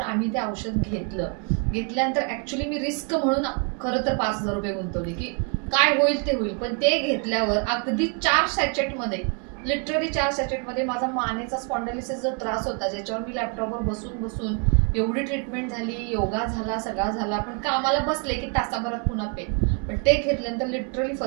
ते औषध घेतल्यानंतर ॲक्च्युली मी रिस्क म्हणून खरं तर 5,000 रुपये गुंतवले की काय होईल ते होईल. पण ते घेतल्यावर अगदी 4 सॅचेटमध्ये, लिटरली 4 सॅचेटमध्ये माझा मानेचा स्पॉन्डिलिसिस जो त्रास होता, ज्याच्यावर मी लॅपटॉपवर बसून एवढी ट्रीटमेंट झाली, योगा झाला, सगळा झाला, पण कामाला बसले की तासाभरात पुन्हा पेन. पण ते घेतल्यानंतर लिटरली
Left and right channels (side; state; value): left; quieter; 37.9 dB